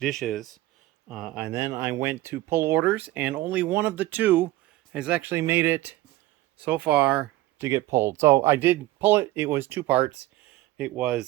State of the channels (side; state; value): left; quieter; 17.3 dB